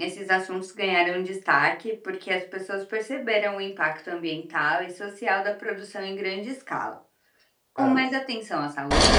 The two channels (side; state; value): both; identical; correlation 1.00